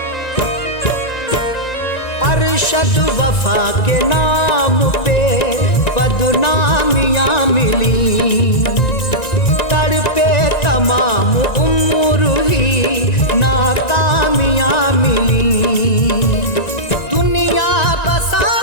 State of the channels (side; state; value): right; late; 1.9 ms